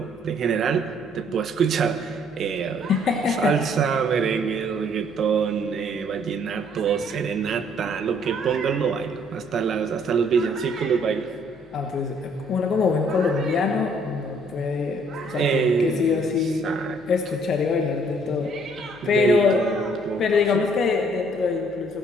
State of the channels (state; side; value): noise; left; hum, 28 dB below the sound